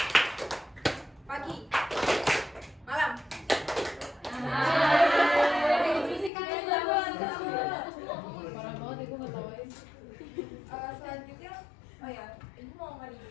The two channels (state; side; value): drops out; right; at 6.3 s